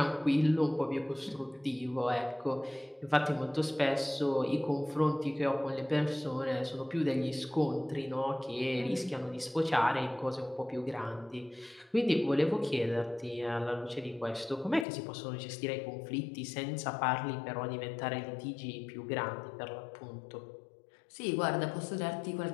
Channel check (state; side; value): drops out; right; at 14.9 s